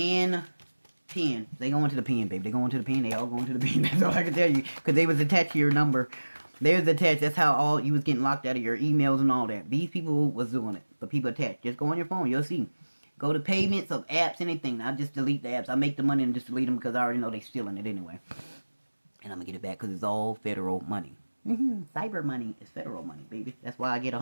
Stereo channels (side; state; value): both; inverted; correlation -1.00